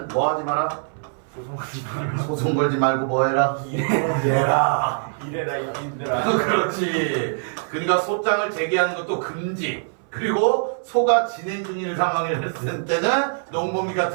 뭐 하지 마라? 소송 걸지 말고 뭐 해라? 일해라. 이래라 이민들아. 그렇지. 그러니까 소장을 제기하는 것도 금지. 그리고 소가 진행 중인 상황을 했을 때는 농번기가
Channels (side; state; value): left; silent; 60 dB below the other